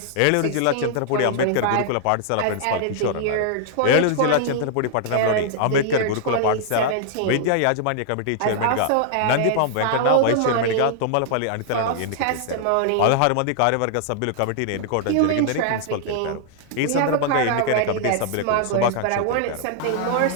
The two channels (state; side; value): different; both; correlation -0.01